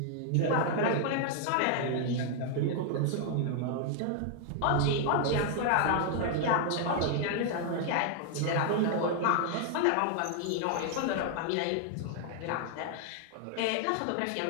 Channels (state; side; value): different; both; correlation 0.00